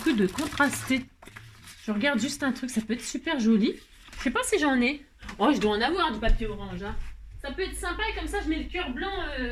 de contraster. Je regarde juste un truc, ça peut être super joli. Je sais pas si j'en ai. Oh, je dois en avoir du papier orange. Hein. Ça peut être sympa et comme ça, je mets le cœur blanc.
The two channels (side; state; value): both; identical; correlation 1.00